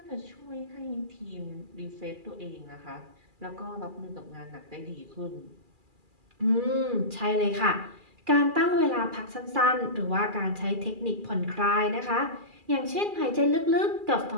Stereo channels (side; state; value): left; late; 2.4 ms